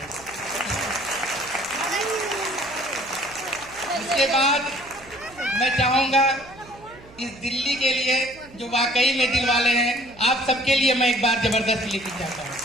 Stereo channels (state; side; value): noise; right; hum, 22 dB below the sound